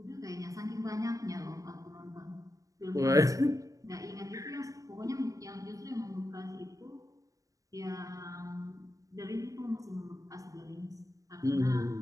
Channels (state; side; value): late; left; 0.16 ms